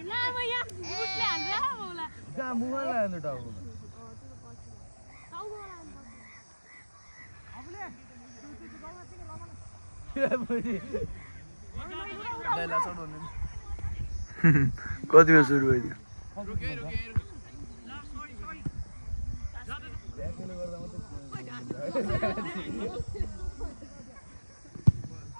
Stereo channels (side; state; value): both; inverted; correlation -1.00